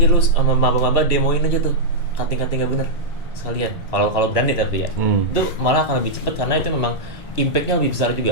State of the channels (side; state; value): both; normal; correlation -0.08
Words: lu sama maba-maba, demoin aja tuh kating-kating gak bener sekalian. Kalau berani tapi ya, itu malah akan lebih cepat karena itu memang impact-nya lebih besar